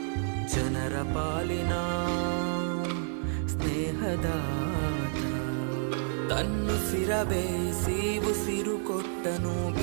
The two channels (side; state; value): left; silent; digital silence